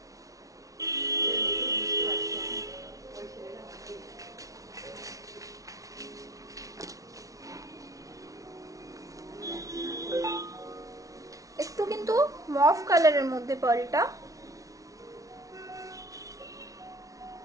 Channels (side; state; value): left; late; 0.17 ms